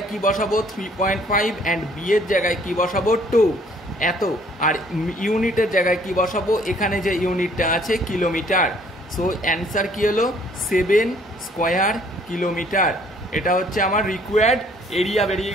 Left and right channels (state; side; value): normal; both; correlation 0.60